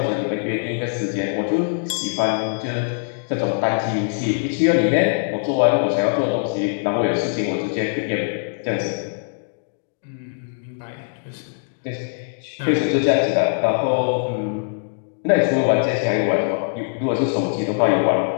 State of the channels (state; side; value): silent; right; digital silence